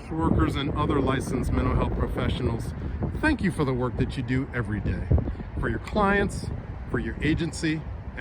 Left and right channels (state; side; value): identical; both; correlation 1.00